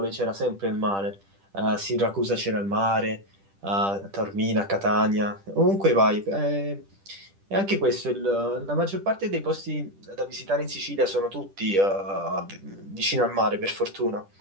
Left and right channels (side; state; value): left; late; 10 ms